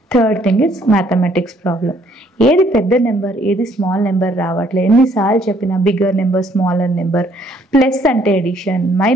Third thing is mathematics problem. ఏది పెద్ద నెంబర్, ఏది స్మాల్ నెంబర్ రావట్లేదు. ఎన్నిసార్లు చెప్పినా bigger number, smaller number, plus అంటే ఎడిషన్,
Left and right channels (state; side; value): normal; both; correlation 0.64